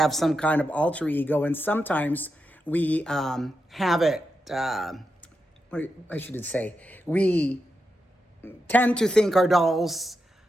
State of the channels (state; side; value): normal; both; correlation 0.87